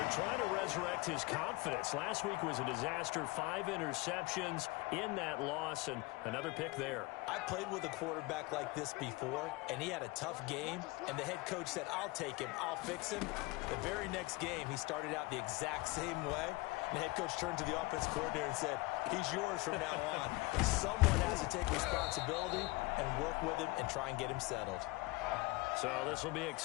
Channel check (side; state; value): right; quieter; 22.6 dB